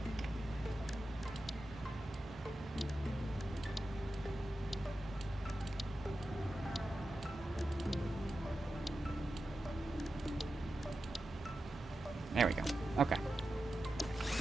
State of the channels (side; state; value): both; normal; correlation 0.91